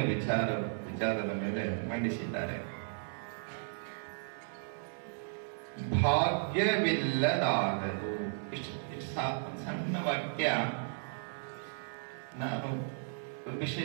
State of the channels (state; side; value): silent; left; digital silence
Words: ವಿಚಾರದ ಮೇಲೆ ಮಂಡಿಸಿದ್ದಾರೆ. ಭಾಗ್ಯವಿಲ್ಲದಾಗದು. ಇಷ್ಟು ಸಣ್ಣ ವಾಕ್ಯ ನಾನು